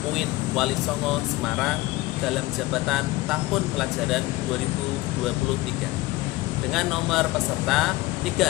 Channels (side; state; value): right; quieter; 19.3 dB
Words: UIN Wali Songo Semarang dalam jabatan tahun pelajaran 2023 dengan nomor peserta